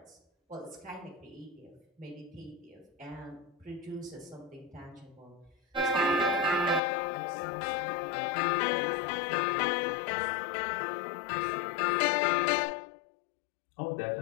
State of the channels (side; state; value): right; drops out; at 6.8 s